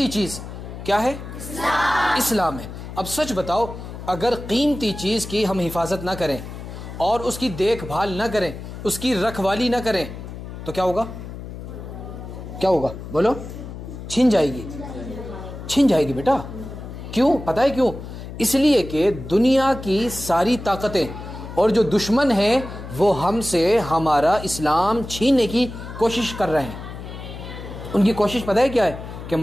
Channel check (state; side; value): noise; left; hum, 11 dB below the sound